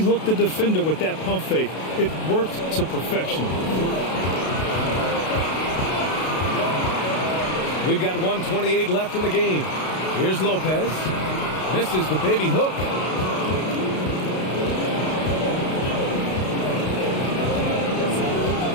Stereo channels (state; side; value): late; right; 32 ms